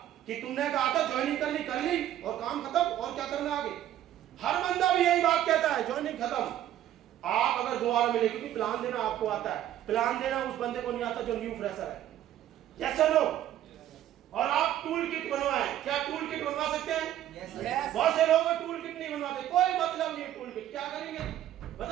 कि तुमने कहा था ज्वाइनिंग कर ली और काम खत्म, और क्या करना आगे। हर बंदा भी यही बात कहता है, ज्वाइनिंग खत्म। आप अगर दोबारा मिले, क्योंकि प्लान देना आपको आता है, प्लान देना उस बंदे को नहीं आता जो न्यू फ्रेशर है, यस और नो। और आप टूल किट बनवाएं, क्या टूल किट बनवा सकते हैं? yes. बहुत से लोग टूल किट नहीं बनवाते, कोई मतलब नहीं है टूल किट, क्या करेंगे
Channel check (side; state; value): left; quieter; 12.1 dB